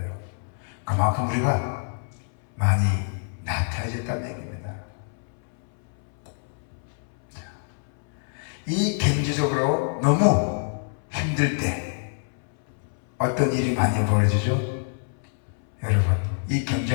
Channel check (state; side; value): silent; right; 61 dB below the other